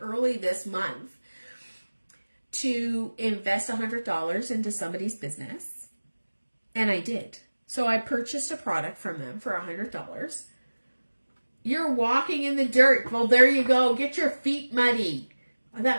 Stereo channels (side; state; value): both; inverted; correlation -1.00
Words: this month to invest $100 into somebody's business. And I did. So I purchased a product from them for $100. You're walking in the dirt. Well, there you go. Get your feet muddy.